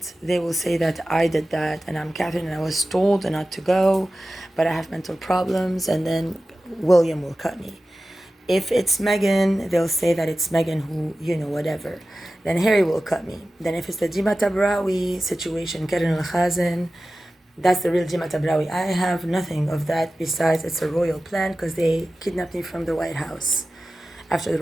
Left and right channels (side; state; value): both; normal; correlation 0.95